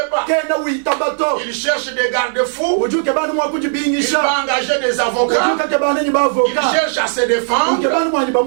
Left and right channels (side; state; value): left; silent; 67 dB below the other